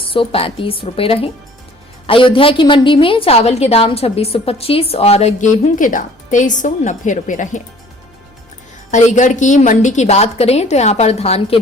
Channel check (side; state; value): both; normal; correlation 0.53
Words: रुपए रहे। अयोध्या की मंडी में चावल के दाम 2625 और गेहूं के दाम 2390 रुपए रहे। अलीगढ़ की मंडी की बात करें तो यहाँ पर धान के